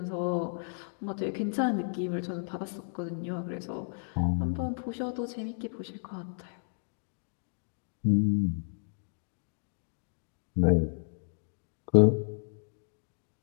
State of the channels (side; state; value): right; silent; digital silence